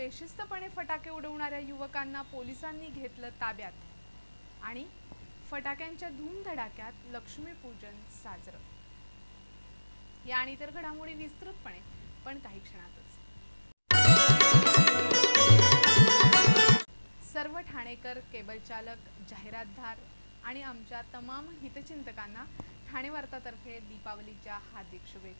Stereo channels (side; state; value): both; inverted; correlation -1.00